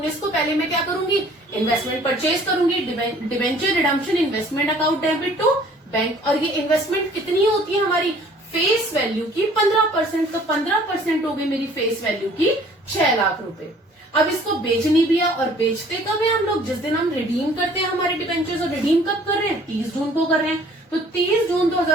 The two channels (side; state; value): both; normal; correlation 0.54